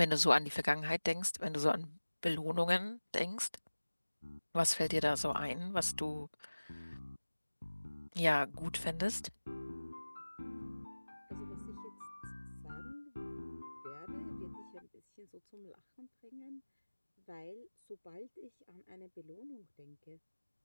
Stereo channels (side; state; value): both; inverted; correlation -1.00